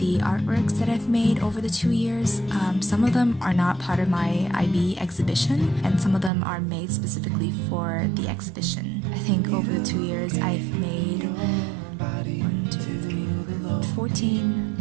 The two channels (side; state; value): left; drops out; at 6.3 s